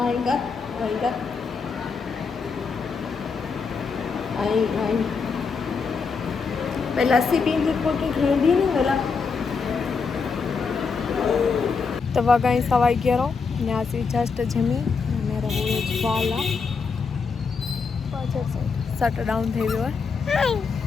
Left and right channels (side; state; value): right; quieter; 5.2 dB